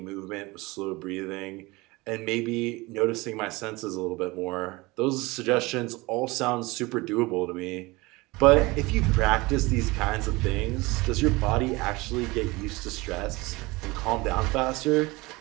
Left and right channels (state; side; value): quieter; left; 22.8 dB